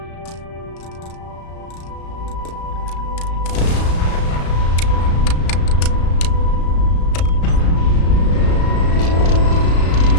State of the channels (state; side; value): late; right; 35 ms